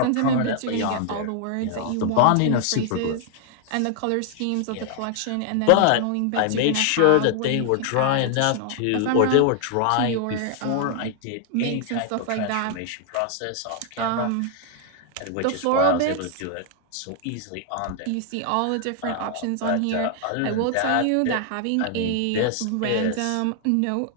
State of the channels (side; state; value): both; different; correlation 0.00